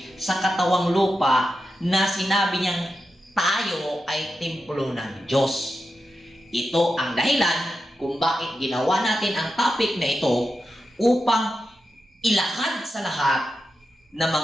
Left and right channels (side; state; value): both; normal; correlation 0.90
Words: sa katawang lupa na sinabi niyang tayo ay templo ng Diyos. Ito ang dahilan kung bakit ginawa natin ang topic na ito upang ilahad sa lahat na